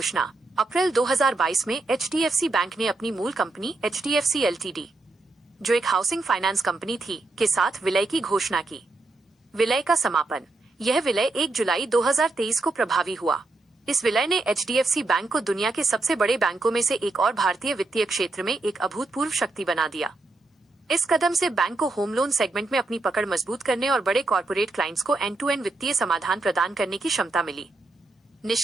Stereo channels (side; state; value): left; quieter; 3.2 dB